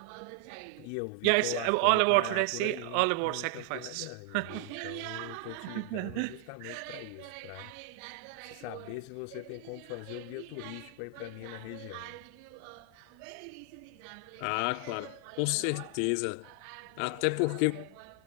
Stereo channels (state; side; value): different; both; correlation 0.00